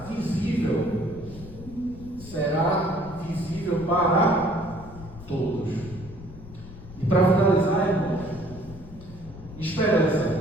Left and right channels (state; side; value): noise; left; rumble, 16 dB below the sound